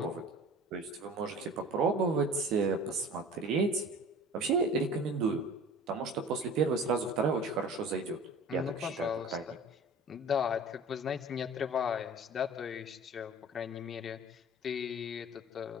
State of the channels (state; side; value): normal; both; correlation 0.42